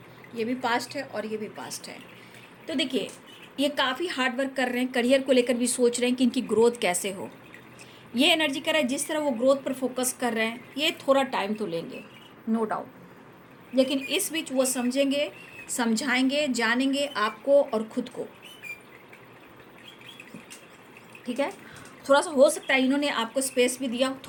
ये भी पास्ट है और ये भी पास्ट है। तो देखिए ये काफ़ी हार्ड वर्क कर रहे हैं, करियर को लेकर भी सोच रहे हैं कि इनकी ग्रोथ कैसे हो। ये एनर्जी कर रहा है, जिस तरह वो ग्रोथ पर फोकस कर रहे हैं, ये थोड़ा टाइम तो लेंगे नो डाउट, लेकिन इस बीच वो समझेंगे, समझाएंगे, जानेंगे आपको और खुद को, ठीक है। थोड़ा सा हो सकता है इन्होंने आपको स्पेस भी दिया,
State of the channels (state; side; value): identical; both; correlation 1.00